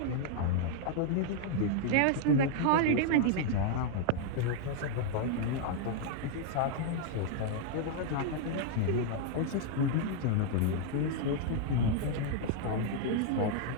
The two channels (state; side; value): different; both; correlation 0.00